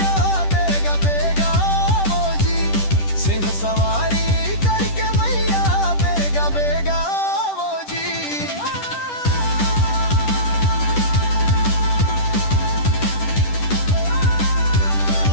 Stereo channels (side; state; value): right; late; 10 ms